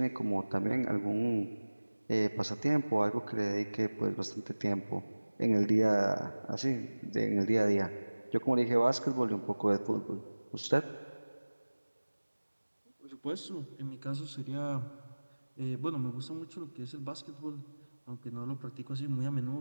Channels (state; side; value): inverted; both; correlation -1.00